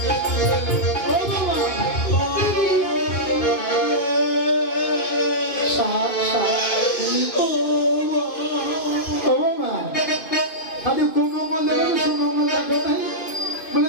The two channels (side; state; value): right; late; 2.5 ms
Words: খালি কোন মঙ্গল দেখো সুমঙ্গল দেখো নাই বলে